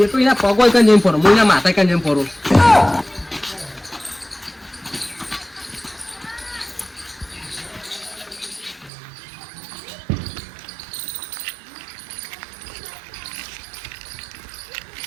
તો એના પગ હોય કઈ ફરો હું એના માથા કઈ ફરું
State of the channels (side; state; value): left; drops out; at 8.9 s